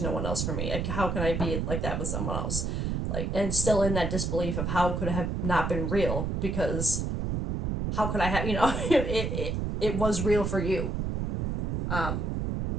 one else for me. Like how can I be like that with someone else? Like and still in that disbelief of how could it have not been real because how could I have it was real for you. Um,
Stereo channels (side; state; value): right; noise; rumble, 1 dB below the sound